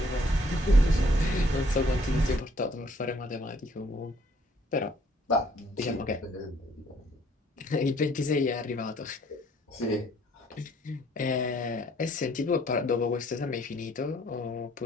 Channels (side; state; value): both; normal; correlation 0.63